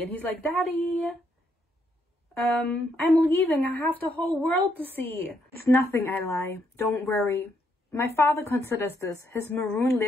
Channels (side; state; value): both; normal; correlation 0.75